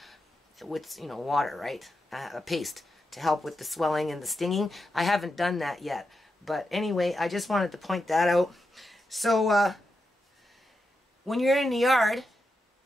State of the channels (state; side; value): normal; both; correlation 0.87